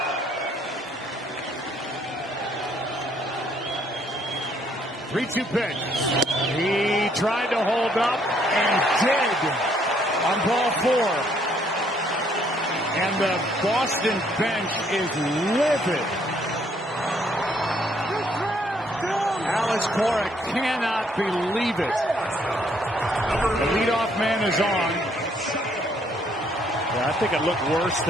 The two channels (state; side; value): normal; both; correlation 0.67